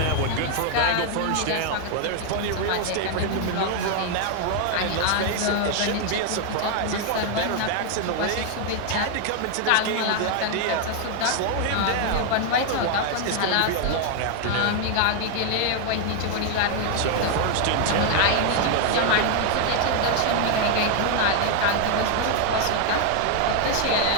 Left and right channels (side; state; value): both; different; correlation 0.00